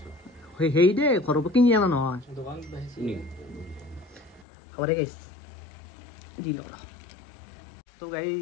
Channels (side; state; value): right; drops out; at 4.5 s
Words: সেই দে ঘৰৰ পৰা কিনি অনা নহয় হ'ব দে গাইছ দি লওঁ তো